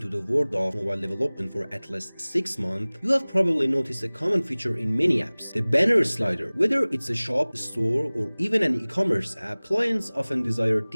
the world of mobile development for at least 6 months, you have probably noticed a common feature in many apps, the banner slider. Whether it's a shop, store, or even an e-commerce app, clients often desire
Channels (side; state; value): both; inverted; correlation -1.00